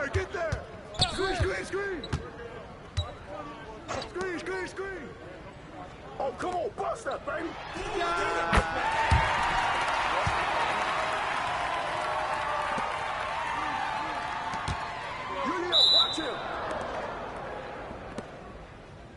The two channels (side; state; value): both; identical; correlation 1.00